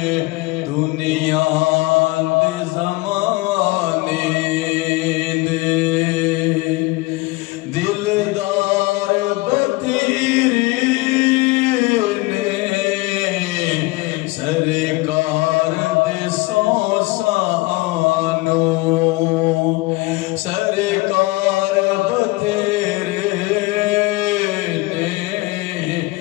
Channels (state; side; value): quieter; right; 21.8 dB